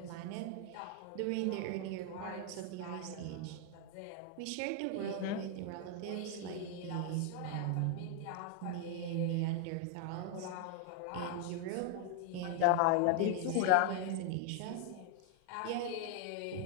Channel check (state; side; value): different; both; correlation 0.00